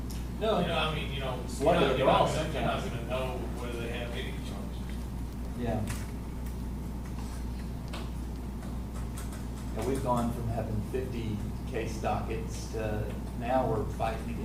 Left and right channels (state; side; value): identical; both; correlation 1.00